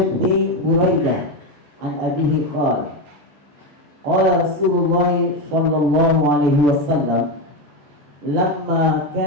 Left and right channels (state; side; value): late; left; 14 ms